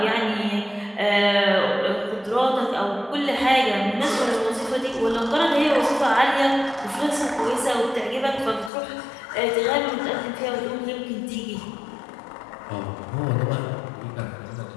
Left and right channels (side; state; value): right; drops out; at 8.7 s